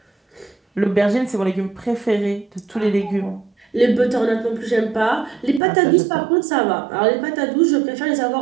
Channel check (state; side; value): drops out; left; at 5.6 s